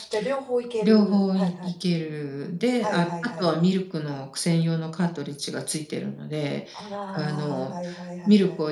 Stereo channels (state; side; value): identical; both; correlation 1.00